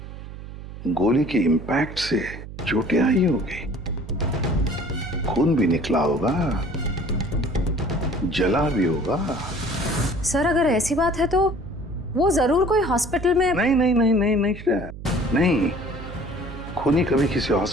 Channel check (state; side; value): noise; right; hum, 12 dB below the sound